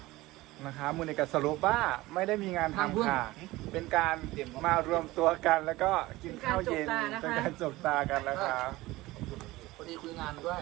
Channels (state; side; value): quieter; left; 18.9 dB